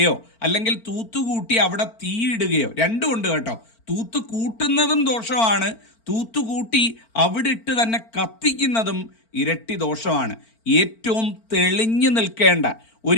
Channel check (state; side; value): late; right; 4.4 ms